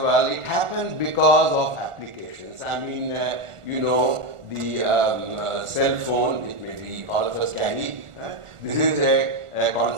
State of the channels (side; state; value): left; late; 1.4 ms